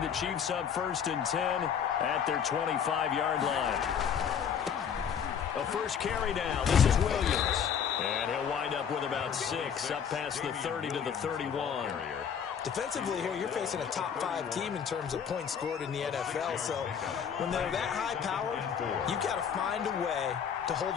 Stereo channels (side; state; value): right; quieter; 7.7 dB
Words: the Chiefs up 1st and 10 at their 25-yard line. A first carry now. This is Williams. And he'll wind up with about 6 up past the 30 to the 31. Defensively here, you're facing a top 5 team in terms of points scored in the NFL. So when they're that high powered, you've got to find a way to hold